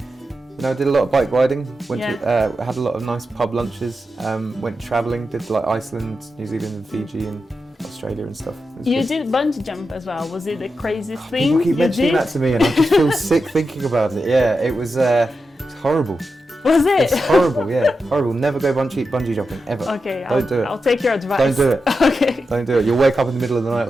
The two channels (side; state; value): both; normal; correlation 0.89